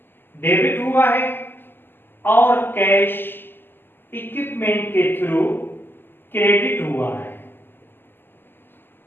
डेबिट हुआ है, और कैश इक्विपमेंट के थ्रू क्रेडिट हुआ है,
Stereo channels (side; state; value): right; late; 0.098 ms